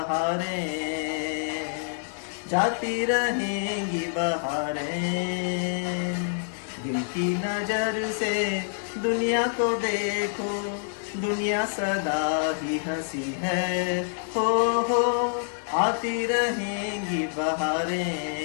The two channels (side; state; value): right; silent; digital silence